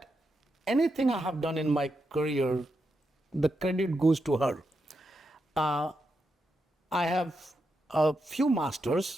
anything I have done in my career, the credit goes to her. Uh, I have a few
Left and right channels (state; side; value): normal; both; correlation 0.85